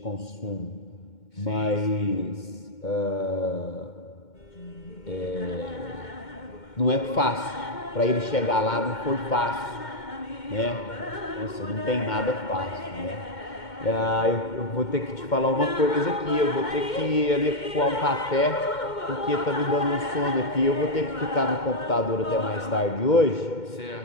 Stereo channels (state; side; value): late; right; 2.2 ms